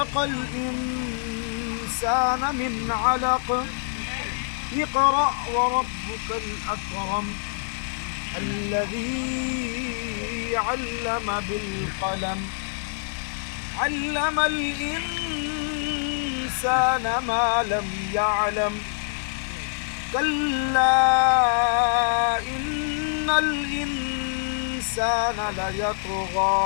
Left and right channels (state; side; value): silent; right; 61 dB below the other